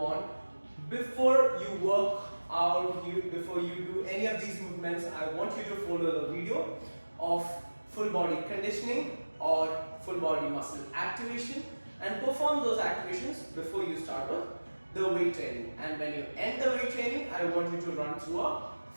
before you work out, before you do any of these movements, I want you to follow the video of full body conditioning or full body muscle activation and perform those activations before you start with the weight training. And when you end the weight training, I want you to run through a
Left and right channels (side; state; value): both; inverted; correlation -1.00